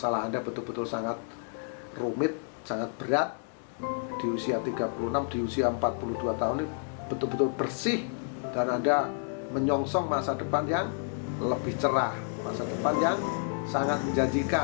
Anda betul-betul sangat rumit, sangat berat. Di usia 36, di usia 42 tahun ini betul-betul bersih, dan Anda menyongsong masa depan yang lebih cerah, masa depan yang sangat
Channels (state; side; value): silent; right; 58 dB below the other